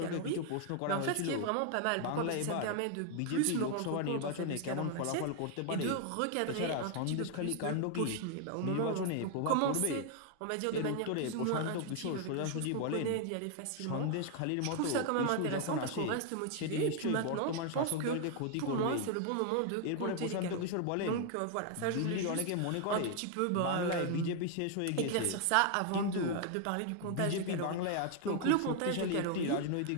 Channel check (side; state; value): both; different; correlation 0.00